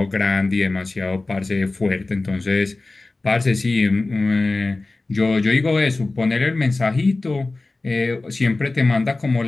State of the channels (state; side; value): quieter; right; 3.2 dB